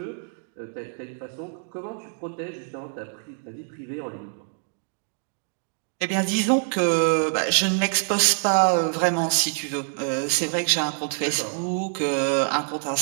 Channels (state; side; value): silent; left; digital silence